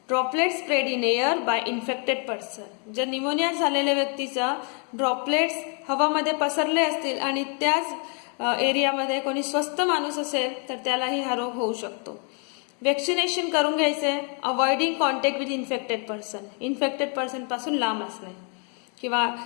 spread in air by infected person, जर न्यूमोनिया झालेल्या व्यक्तीचा ड्रॉपलेट्स हवामध्ये पसरले असतील आणि त्याच एरियामध्ये कोणी स्वस्थ माणूस असेल तर त्यालाही हा रोग होऊ शकतो. वॅक्सिनेशन करून घ्यायचे. Avoiding contact with infected person पासून लांब असणे किंवा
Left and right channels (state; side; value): quieter; right; 39.2 dB